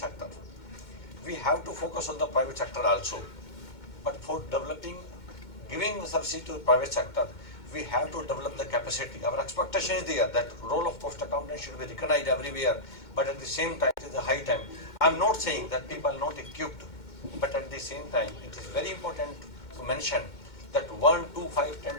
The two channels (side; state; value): right; late; 2.2 ms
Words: We have to focus on the private sector also. But for developing, giving services to the private sector, we have to develop the capacity. Our expectation is there that role of cost accountant should be recognized everywhere. But at the same time, it is a high time. I'm not saying that people are not equipped, but at the same time, it is very important to mention that 1, 2, 5, 10,